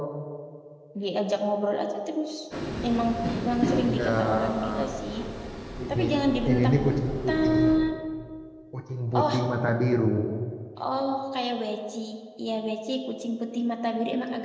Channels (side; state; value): both; identical; correlation 1.00